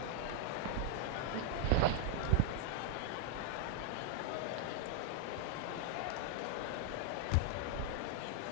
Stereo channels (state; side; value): different; both; correlation 0.00